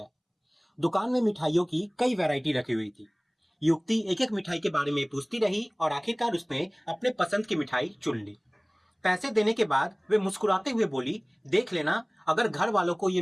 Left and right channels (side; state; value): both; identical; correlation 1.00